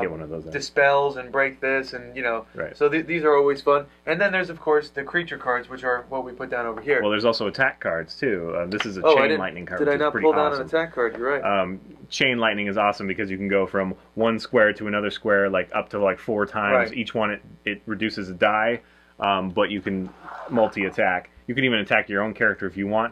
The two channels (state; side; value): identical; both; correlation 1.00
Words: one of those. Dispels and break this, and So these are always fun. And then there's of course the creature cards, which are what we put down over here. Well, there's also attack cards too. This is a chain lightning card. Did I not pull down an attack card? You're right. Chain lightning is awesome because you can go from one square to another square, like up to 4 times. Each one it reduces a die, but you can multi-attack. You can even attack your own character if you